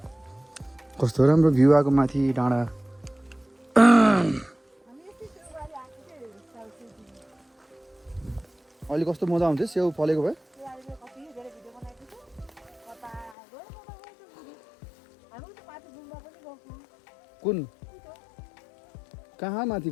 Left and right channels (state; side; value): drops out; right; at 13.4 s